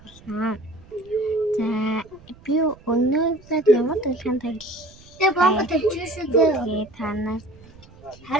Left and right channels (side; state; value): right; noise; rumble, 24 dB below the sound